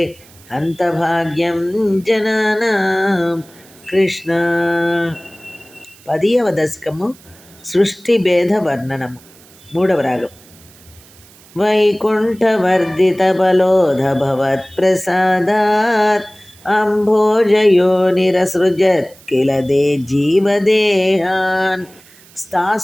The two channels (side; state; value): right; noise; hiss, 25 dB below the sound